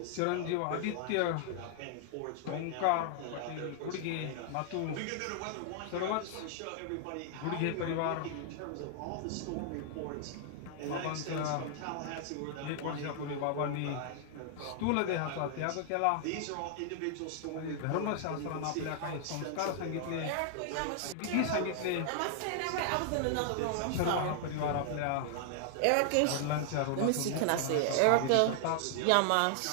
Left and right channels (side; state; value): both; different; correlation 0.00